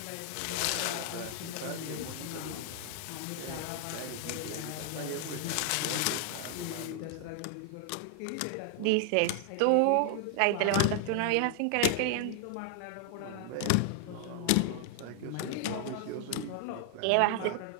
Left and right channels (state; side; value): different; both; correlation 0.00